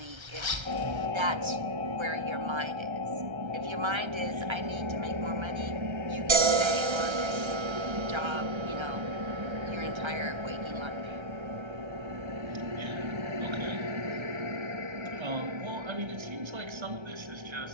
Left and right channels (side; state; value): left; late; 1.3 ms